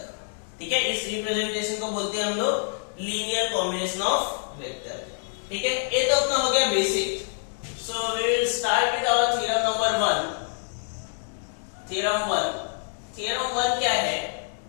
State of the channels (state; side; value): silent; right; digital silence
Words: ठीक है। इस representation को बोलते हैं हम लोग linear combination of vector, ठीक है। ये तो अपना हो गया basic. So we will start with our theorem number 1. theorem 1 क्या है?